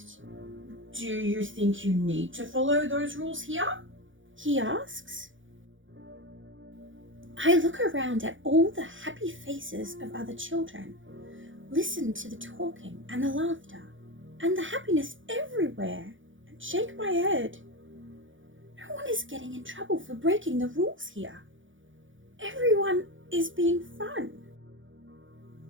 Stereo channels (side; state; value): left; late; 0.56 ms